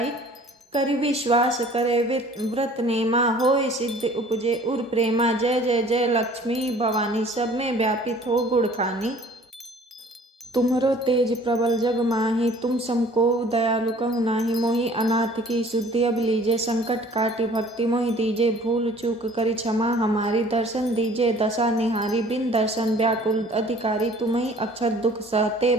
करि विश्वास करे व्रत नेमा, होय सिद्ध उपजे उर प्रेमा। जय जय जय लक्ष्मी भवानी, सब में व्यापित हो गुण खानी। तुम्हरो तेज प्रबल जग माही, तुम समको दयालु कहु नाही। मोहि अनाथ की शुद्धि अब लीजे, संकट काटी भक्ति मोहि दीजे। भूल चूक करी क्षमा हमारी, दर्शन दीजे दशा निहारी। बिन दर्शन व्याकुल अधिकारी, तुम्हि अक्षर दुख सहते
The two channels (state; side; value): normal; both; correlation 0.51